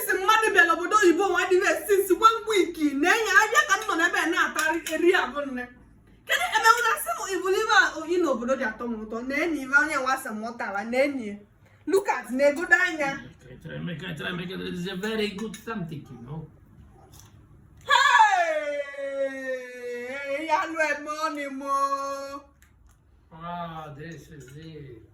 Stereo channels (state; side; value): identical; both; correlation 1.00